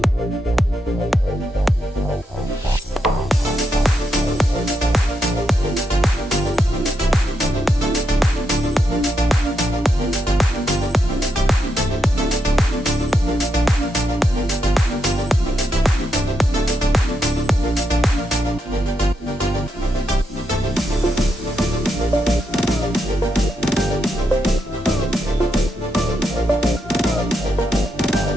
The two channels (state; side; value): normal; both; correlation 0.82